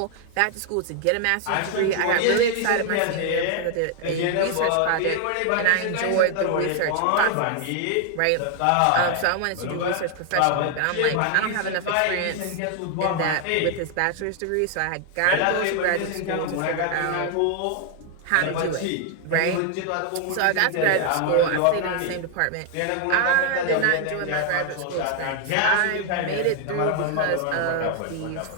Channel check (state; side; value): different; both; correlation 0.00